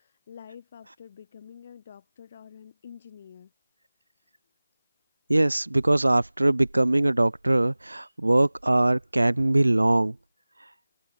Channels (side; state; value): both; inverted; correlation -1.00